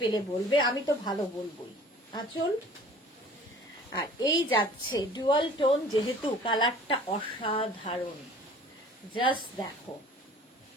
বলবে, আমি তো ভালো বলবোই। আঁচল, আর এই যাচ্ছে ডুয়াল টোন, যেহেতু কালারটা অসাধারণ, জাস্ট দেখো।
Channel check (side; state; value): both; normal; correlation 0.48